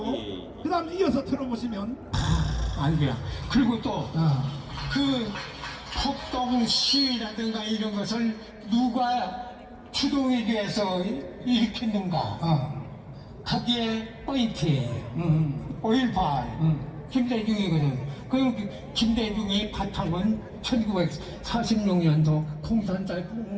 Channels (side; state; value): both; identical; correlation 1.00